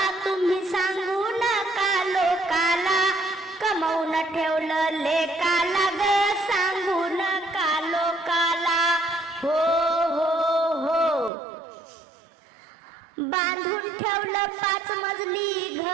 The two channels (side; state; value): left; drops out; at 11.3 s